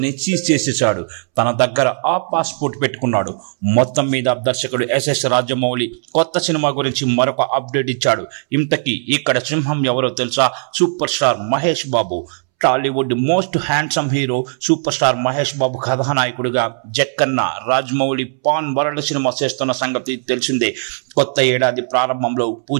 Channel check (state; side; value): silent; left; 67 dB below the other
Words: సీజ్ చేసేశాడు. తన దగ్గర ఆ పాస్పోర్ట్ పెట్టుకున్నాడు. మొత్తం మీద దర్శకుడు SS రాజమౌళి కొత్త సినిమా గురించి మరొక అప్డేట్ ఇచ్చాడు. ఇంతకీ ఇక్కడ సింహం ఎవరో తెలుసా? Super star Mahesh Babu. Tollywood most handsome hero super star Mahesh Babu కథానాయకుడిగా Jakkanna Rajamouli pan world cinema చేస్తున్న సంగతి తెలిసిందే. కొత్త ఏడాది ప్రారంభంలో